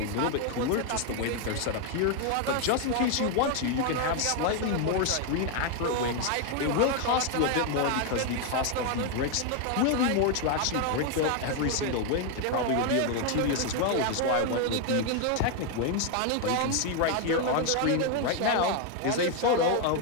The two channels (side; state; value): both; different; correlation 0.01